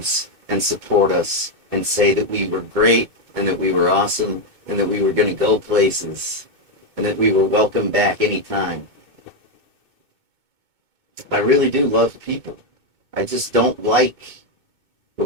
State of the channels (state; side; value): late; left; 2.2 ms